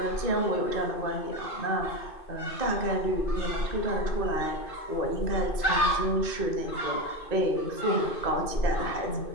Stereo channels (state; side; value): late; right; 2.5 ms